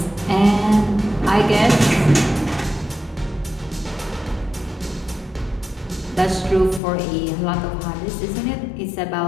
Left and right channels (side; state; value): right; drops out; at 6.8 s